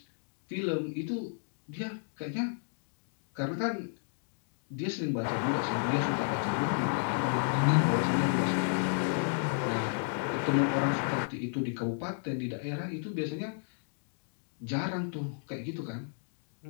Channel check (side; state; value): right; silent; digital silence